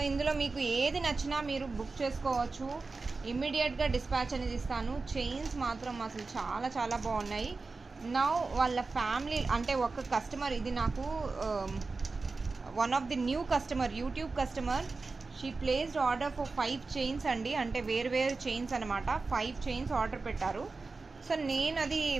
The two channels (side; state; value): left; quieter; 3.9 dB